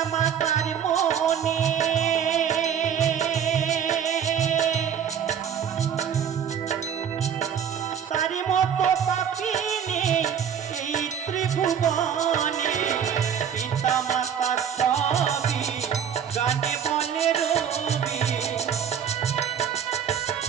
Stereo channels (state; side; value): quieter; left; 8.2 dB